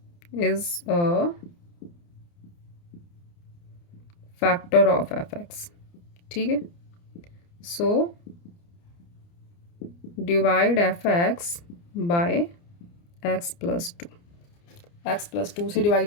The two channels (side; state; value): right; late; 29 ms